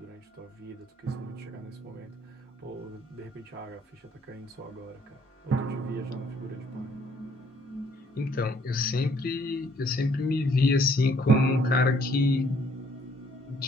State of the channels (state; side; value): normal; both; correlation 0.64